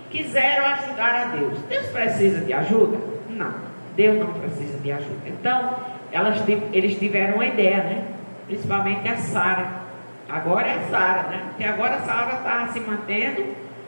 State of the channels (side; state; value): both; inverted; correlation -1.00